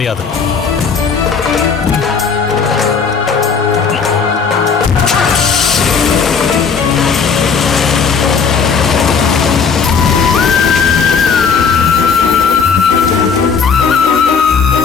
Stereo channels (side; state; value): right; quieter; 5.8 dB